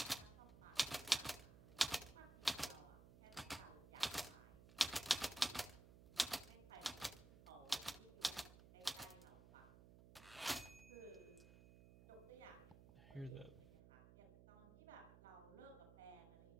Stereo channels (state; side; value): noise; right; hum, 18 dB below the sound